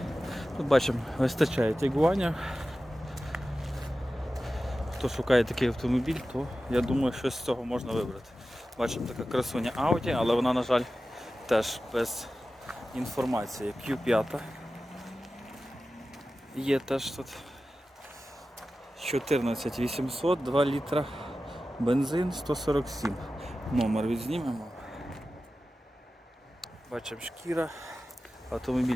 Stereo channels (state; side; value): normal; both; correlation 0.94